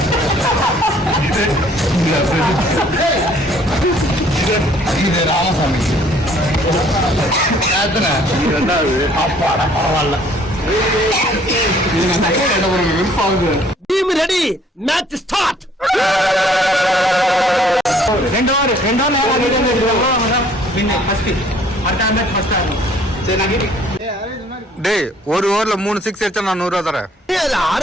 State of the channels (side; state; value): both; normal; correlation 0.59